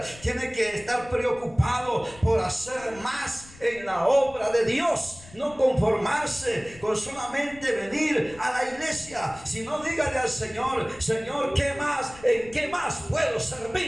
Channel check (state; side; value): noise; left; rumble, 21 dB below the sound